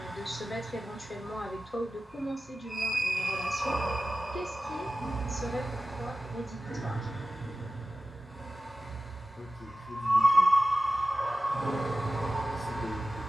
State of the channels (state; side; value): normal; both; correlation 0.95